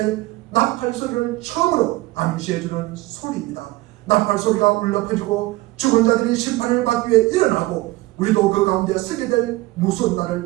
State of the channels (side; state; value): left; quieter; 19.3 dB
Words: 나팔 소리를 처음으로 암시해주는 소리입니다. 나팔 소리가 울려 퍼지고 죽은 자들이 심판을 받기 위해 일어나고 우리도 그 가운데 서게 될 무서운